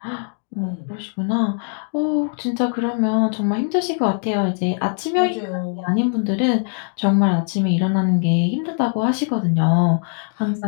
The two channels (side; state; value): right; silent; 55 dB below the other